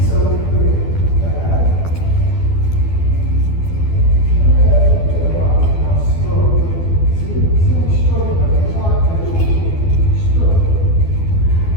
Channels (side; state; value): right; late; 12 ms